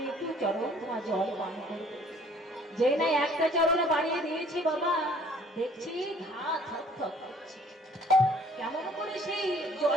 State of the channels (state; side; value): normal; both; correlation 0.56